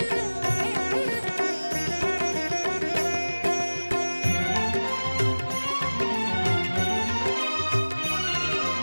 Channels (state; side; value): inverted; both; correlation -1.00